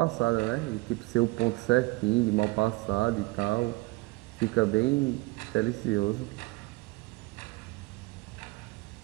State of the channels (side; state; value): left; quieter; 23.6 dB